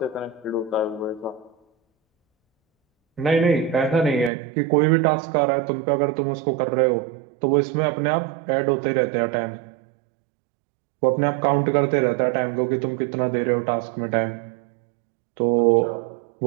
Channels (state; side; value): drops out; left; at 4.3 s